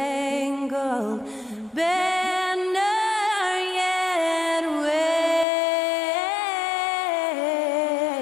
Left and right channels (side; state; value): right; drops out; at 5.5 s